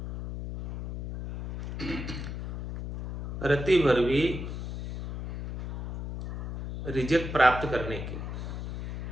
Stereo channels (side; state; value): left; noise; hum, 6 dB below the sound